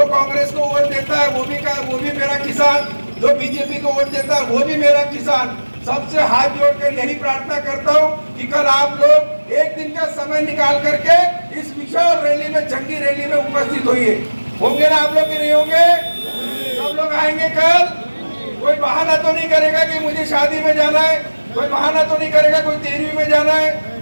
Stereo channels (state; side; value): inverted; both; correlation -1.00